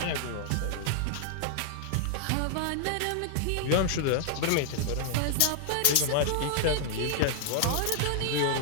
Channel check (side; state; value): both; different; correlation -0.01